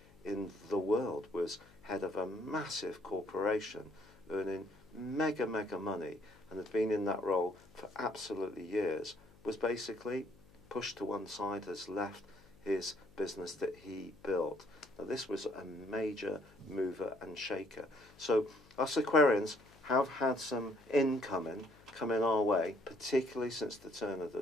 in the world, was head of a massive corporation, earning mega money, and had been in that role for absolutely years, was basically pushed to one side, has left his business that he built. Now, this was a major mover and shaker. So us Aquarians have had some incoming coming our way, particularly since the turn of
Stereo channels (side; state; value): left; noise; hum, 25 dB below the sound